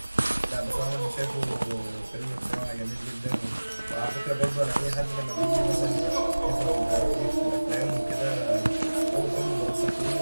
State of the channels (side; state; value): both; inverted; correlation -1.00